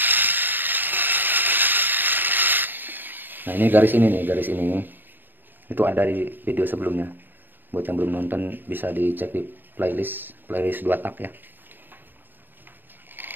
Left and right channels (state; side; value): late; left; 0.093 ms